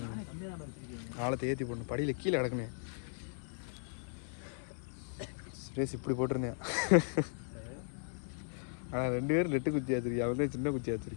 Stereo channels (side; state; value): right; silent; 53 dB below the other